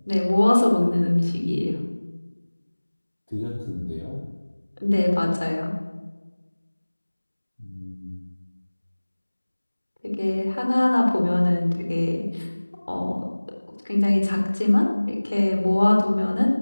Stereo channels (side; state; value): both; inverted; correlation -1.00